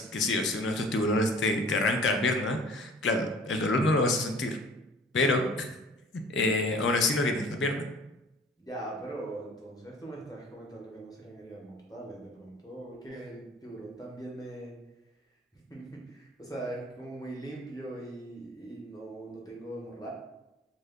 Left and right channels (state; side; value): normal; both; correlation 0.48